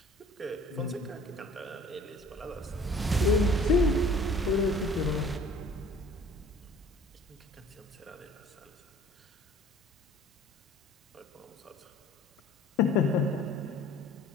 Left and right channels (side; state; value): both; normal; correlation 0.50